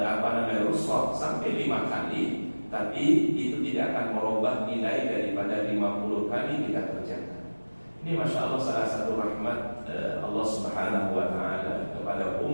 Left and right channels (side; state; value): both; inverted; correlation -1.00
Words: rukhsah sampai 5 kali, tapi itu tidak akan merubah nilai daripada 50 kali kita kerjakan. Ini Masya Allah salah satu rahmat Allah Subhanahu wa ta'ala kepada